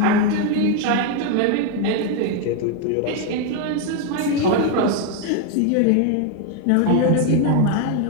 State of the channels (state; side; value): different; both; correlation 0.01